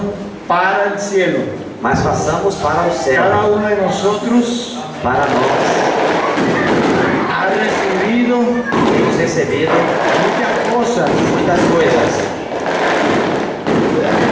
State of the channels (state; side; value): identical; both; correlation 1.00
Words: para el cielo. mas façamos para o céu, Cada uno de nosotros para nós. ha recibido Temos recebido muchas cosas. muitas coisas.